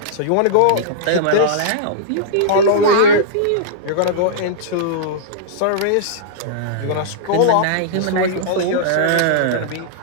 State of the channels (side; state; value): both; different; correlation -0.02